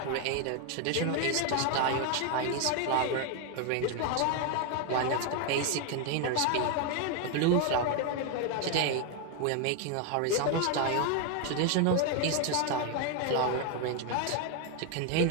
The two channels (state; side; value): different; both; correlation 0.01